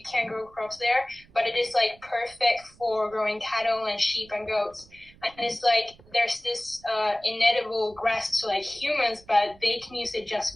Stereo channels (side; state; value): right; noise; rumble, 26 dB below the sound